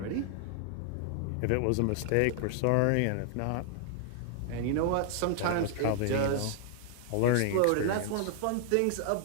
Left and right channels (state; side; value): different; both; correlation 0.00